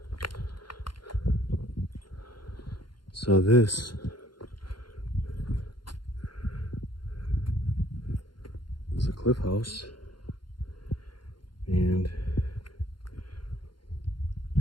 So this is a cliff house, and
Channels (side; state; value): right; late; 0.72 ms